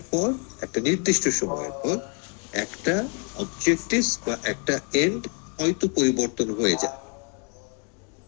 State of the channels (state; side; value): quieter; right; 37.5 dB